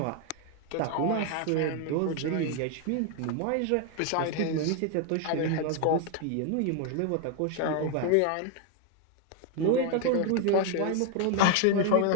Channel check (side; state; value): both; different; correlation 0.01